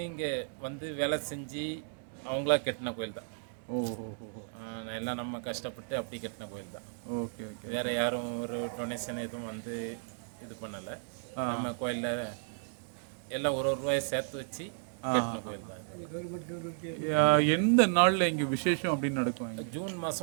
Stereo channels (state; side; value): silent; left; digital silence